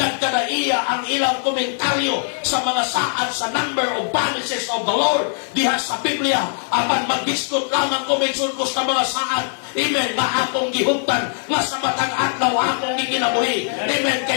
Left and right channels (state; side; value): silent; right; digital silence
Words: ang ilang komentaryo sa mga saad sa number of promises of the Lord diha sa Biblia. Apan maghiskot lamang ko maigsoon ko sa mga saad, amen, nga akong gihuptan, nga sa matang adlaw akong gikinabuhi. Amen.